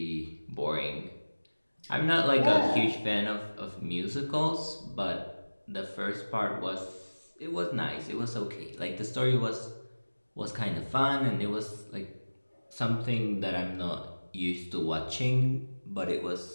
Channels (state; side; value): inverted; both; correlation -1.00